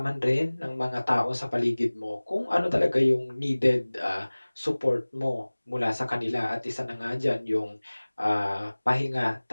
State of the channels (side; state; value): both; inverted; correlation -1.00